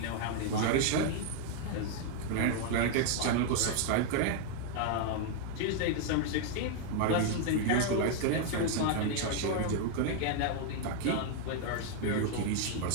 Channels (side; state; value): both; different; correlation 0.00